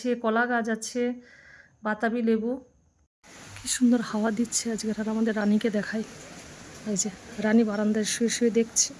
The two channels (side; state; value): both; identical; correlation 1.00